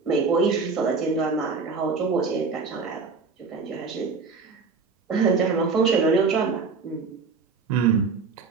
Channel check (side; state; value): left; quieter; 4.7 dB